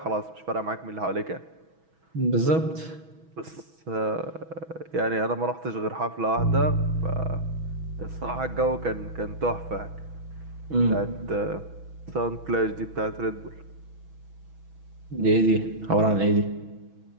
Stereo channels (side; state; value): left; late; 6.2 ms